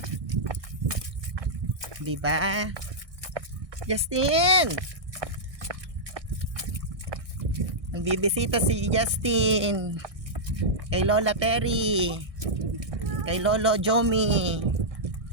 Diba? Justin! Nagbibisita si Justin kay Lola Terry, kay Lolo Jomi.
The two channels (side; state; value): left; late; 1.6 ms